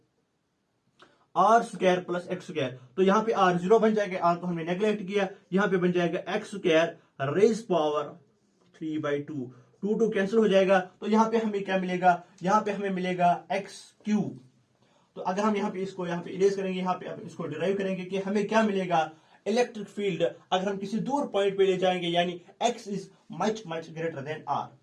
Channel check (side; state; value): both; identical; correlation 1.00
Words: are square plus x square. तो यहां पे आर 0 बन जाएगा, आर को हमने नेग्लेक्ट किया, यहां पे बन जाएगा x square raise power 3/2, 2 cancel हो जाएगा। तो यहां पे हमें क्या मिलेगा, यहां पे हमें मिलेगा एक्स क्यूब। तो अगर हम यहां पे इसको यहां पे इरेज करेंगे, यहां पे इसको डिराइव करेंगे कि हमें क्या मिलेगा, इलेक्ट्रिक फील्ड अगर हम किसी दूर पॉइंट पे ले जाएंगे, यानी x is much greater than r.